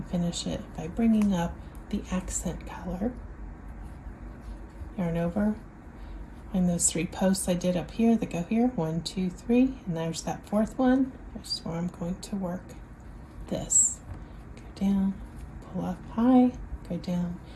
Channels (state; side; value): identical; both; correlation 1.00